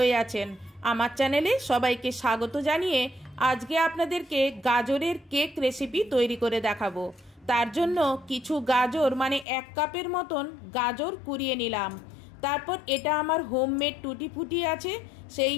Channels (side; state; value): right; drops out; at 9.5 s